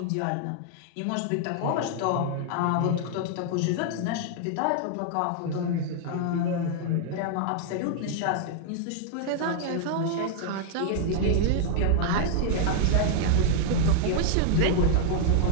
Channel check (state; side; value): different; both; correlation 0.00